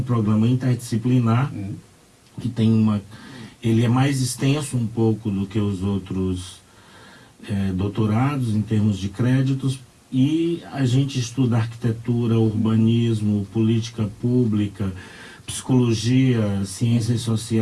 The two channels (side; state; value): both; identical; correlation 1.00